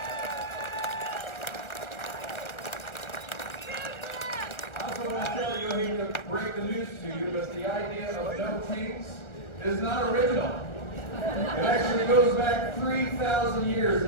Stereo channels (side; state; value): right; late; 1.4 ms